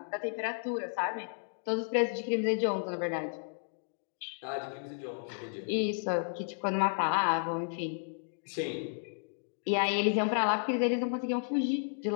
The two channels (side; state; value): right; silent; digital silence